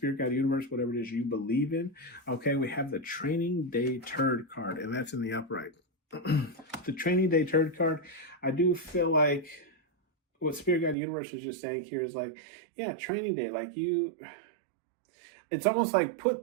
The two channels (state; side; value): drops out; left; at 11.0 s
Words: Guide Universe, whatever it is you believe in. Okay, we have the Training Day Turd card, and that's in the upright. The Training Day Turd card, I do feel like what Spirit Guide Universe is just saying here is like, yeah, Training Day, like it's almost like